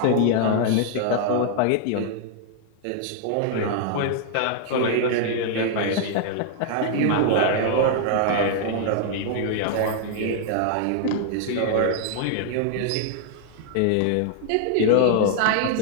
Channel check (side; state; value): both; different; correlation 0.00